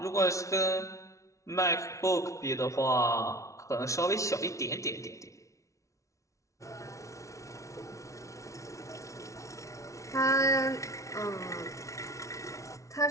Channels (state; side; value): late; right; 0.15 ms